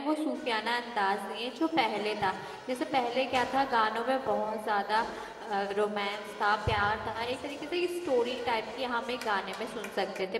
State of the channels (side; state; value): both; identical; correlation 1.00